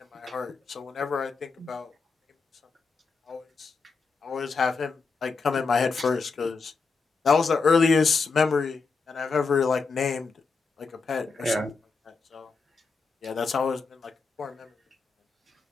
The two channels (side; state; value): right; quieter; 4.6 dB